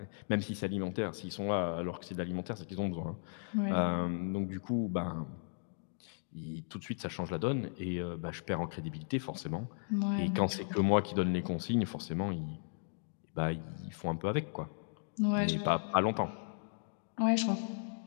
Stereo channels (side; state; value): right; silent; digital silence